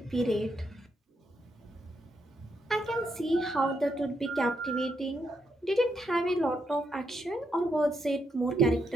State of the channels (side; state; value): both; normal; correlation 0.79